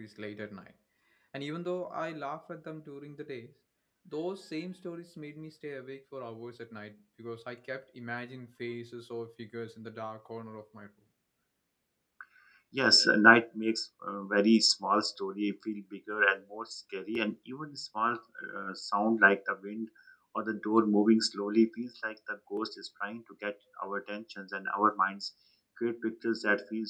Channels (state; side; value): identical; both; correlation 1.00